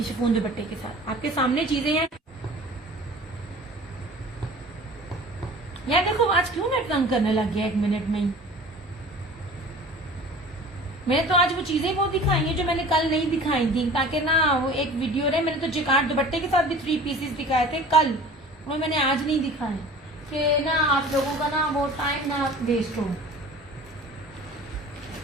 शिफॉन दुपट्टे के साथ आपके सामने चीजें हैं। यार देखो, आज क्यों नेट तंग करने लग गया 1 मिनट में ही। मैंने तो आज वो चीजें बहुत दिखाई हैं जो मैंने कल नहीं दिखाई थी, ताकि ना वो एक वीडियो रहे। मैंने तो जेकार्ड दुपट्टे के साथ भी 3 पीसेस दिखाए थे कल, वो मैंने आज नहीं दिखाए, कि ना आप लोगों का ना वो टाइम ना वेस्ट हो।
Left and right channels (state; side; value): normal; both; correlation 0.43